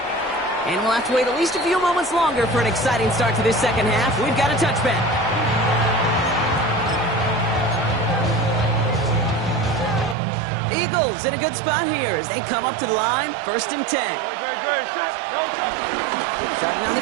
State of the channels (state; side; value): drops out; left; at 10.2 s